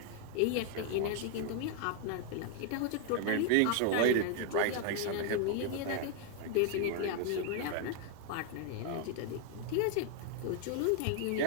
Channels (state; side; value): different; both; correlation 0.00